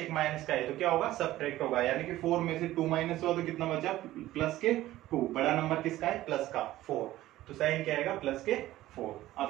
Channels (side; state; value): left; quieter; 15.4 dB